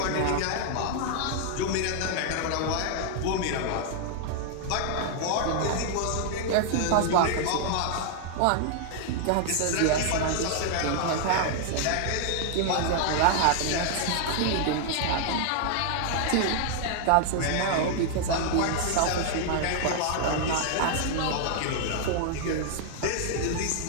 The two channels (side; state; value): both; different; correlation 0.00